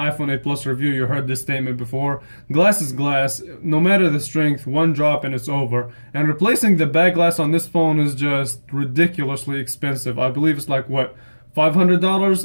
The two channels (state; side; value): inverted; both; correlation -1.00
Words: 8 Plus review, you heard this statement before. Glass is glass, no matter the strength, one drop and it's over. And replacing the back glass on this phone is just ridiculously expensive. I believe it's like, what, $500?